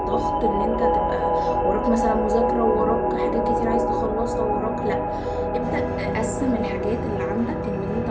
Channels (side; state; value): both; identical; correlation 1.00